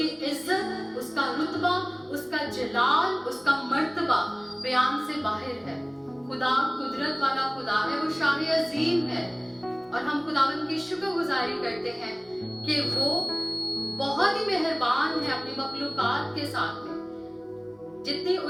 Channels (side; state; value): both; identical; correlation 1.00